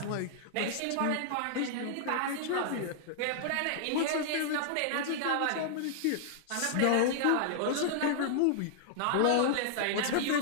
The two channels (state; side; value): different; both; correlation -0.01